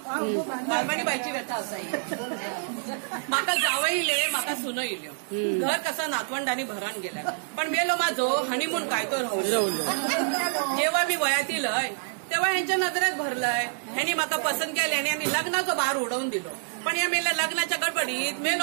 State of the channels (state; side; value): silent; left; 58 dB below the other